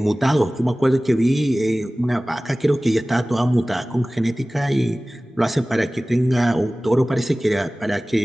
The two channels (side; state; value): both; normal; correlation 0.98